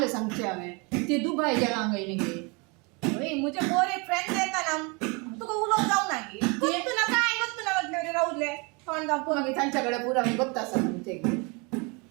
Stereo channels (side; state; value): left; quieter; 30.1 dB